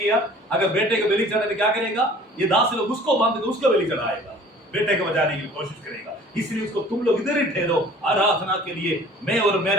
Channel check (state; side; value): normal; both; correlation 0.49